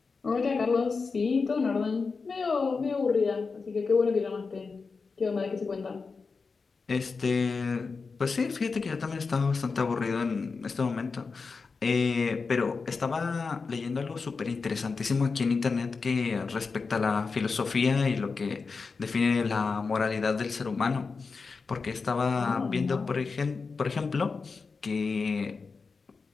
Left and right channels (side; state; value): right; quieter; 4.7 dB